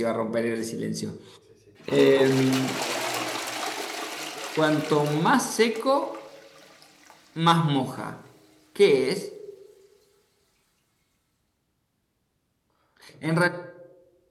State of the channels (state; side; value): identical; both; correlation 1.00